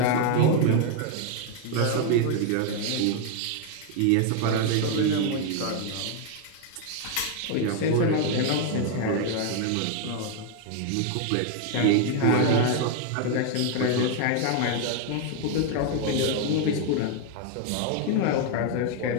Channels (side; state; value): both; different; correlation 0.00